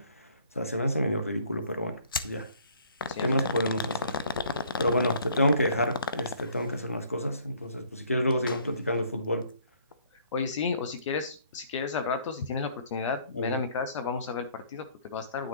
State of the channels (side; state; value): both; inverted; correlation -0.60